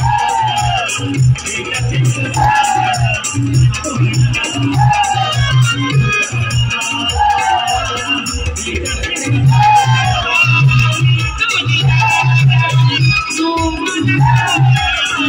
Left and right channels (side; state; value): both; identical; correlation 1.00